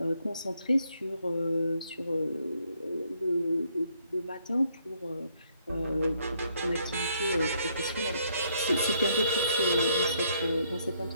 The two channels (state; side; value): inverted; both; correlation -0.70